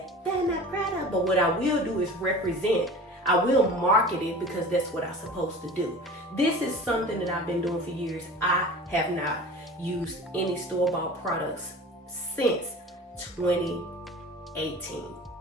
that I'm not proud of. But what I will do is represent. I will market it because that's what I'm supposed to do. This is something that I've been doing for years. I have not used any store-bought products since 2018.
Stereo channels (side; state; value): both; normal; correlation 0.39